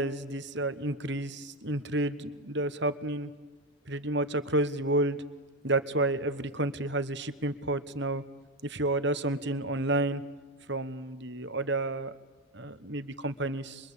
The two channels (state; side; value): normal; both; correlation 0.11